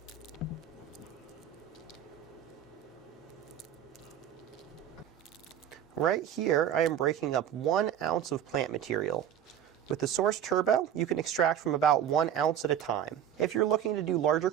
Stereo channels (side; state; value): left; quieter; 10.0 dB